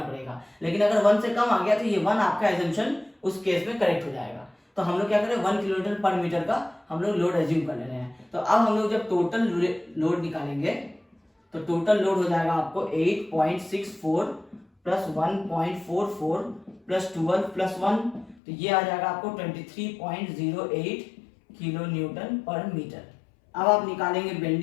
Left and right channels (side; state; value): right; drops out; at 18.4 s